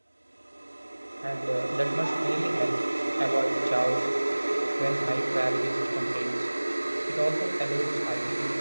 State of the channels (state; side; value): inverted; both; correlation -1.00